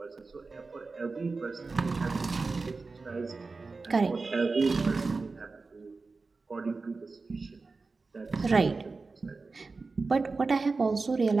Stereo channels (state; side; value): quieter; left; 4.0 dB